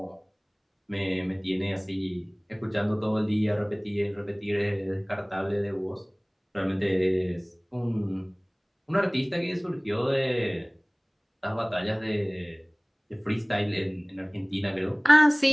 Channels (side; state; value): both; identical; correlation 1.00